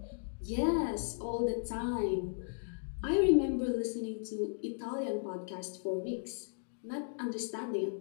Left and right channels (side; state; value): right; silent; digital silence